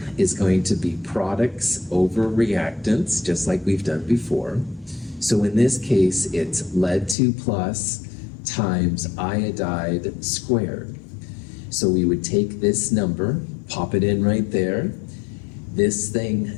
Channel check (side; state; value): right; drops out; at 7.2 s